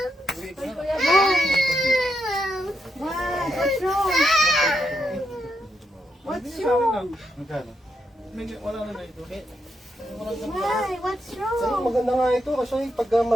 Kuya, bye. What? What's wrong? What's wrong? Magkano? Wala na na ito. Why? What's Sa'yo, wrong? maganda nga ito kasi pagka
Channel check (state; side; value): normal; both; correlation 0.82